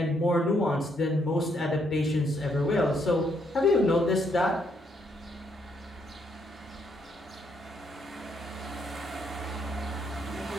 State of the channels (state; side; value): normal; both; correlation 0.73